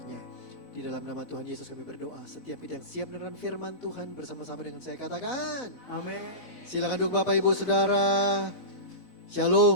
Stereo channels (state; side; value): late; right; 4.0 ms